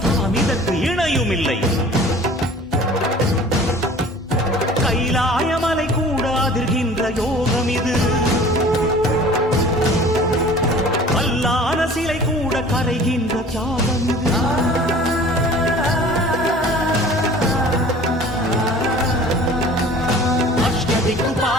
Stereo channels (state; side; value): normal; both; correlation 0.46